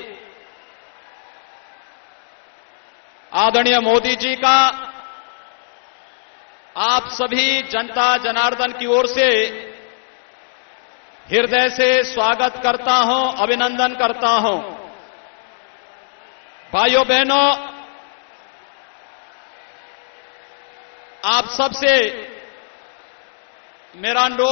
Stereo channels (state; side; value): silent; right; digital silence